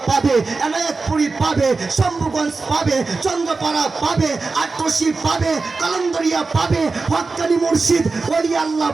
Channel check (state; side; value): quieter; left; 4.0 dB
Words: পাবে, এনায়েতপুরি পাবে, শম্ভুগঞ্জ পাবে, চন্দ্রপাড়া পাবে, আটরশি পাবে, কালন্দরিয়া পাবে, হক্কানি মুর্শিদ ওলি আল্লাহ